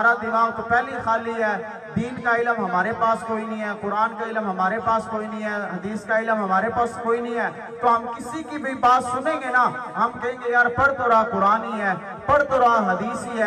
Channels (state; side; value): identical; both; correlation 1.00